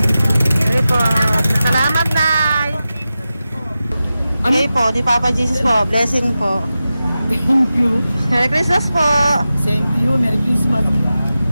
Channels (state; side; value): inverted; both; correlation -0.93